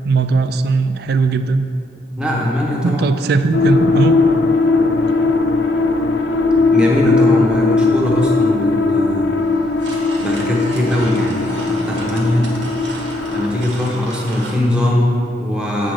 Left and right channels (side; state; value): both; normal; correlation 0.73